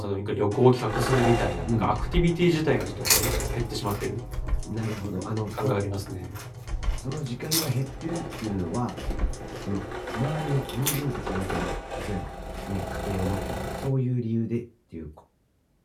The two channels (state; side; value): identical; both; correlation 1.00